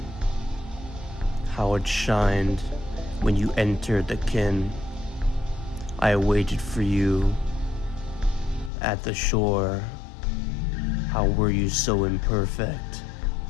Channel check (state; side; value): drops out; right; at 8.7 s